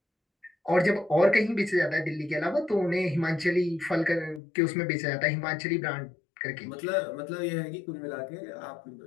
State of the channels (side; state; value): right; drops out; at 4.4 s